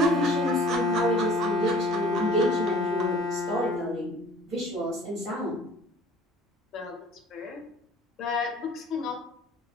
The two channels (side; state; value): both; normal; correlation 0.49